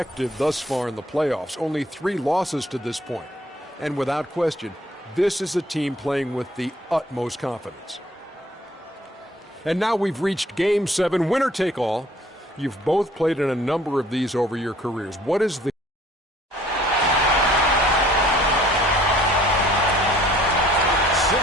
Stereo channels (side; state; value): both; normal; correlation 0.57